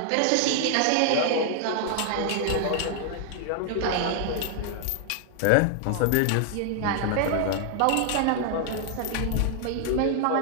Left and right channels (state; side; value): different; both; correlation 0.00